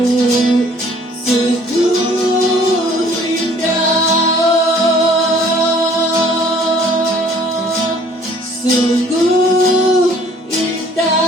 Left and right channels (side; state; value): both; normal; correlation 0.56